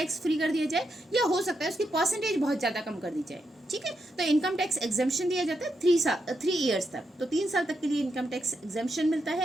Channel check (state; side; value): normal; both; correlation 0.83